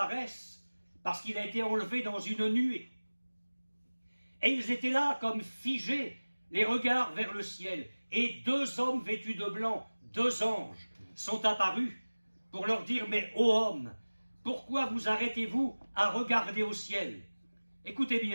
parce qu'il a été enlevé dans une nuée. Et ils étaient là comme figés, les regards vers le ciel. Et 2 hommes vêtus de blanc, 2 anges, sont apparus pour leur dire: mais ô hommes, pourquoi vous arrêtez-vous à regarder au ciel? Écoutez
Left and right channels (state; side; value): inverted; both; correlation -1.00